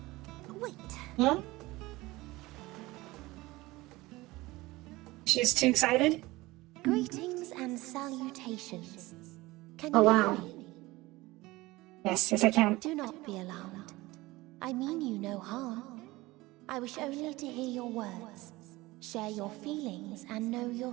Wait. Huh? She's too excited? Greetings and salutations. Can Oh, you wow. hear me? Yes, I can. Do not be alarmed. I mean you no harm. I wish only to hear your words, share your feelings, and know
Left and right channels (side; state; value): left; quieter; 20.1 dB